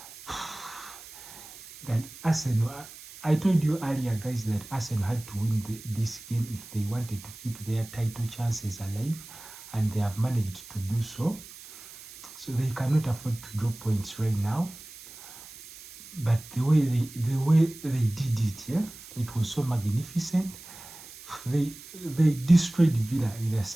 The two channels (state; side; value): noise; right; hiss, 17 dB below the sound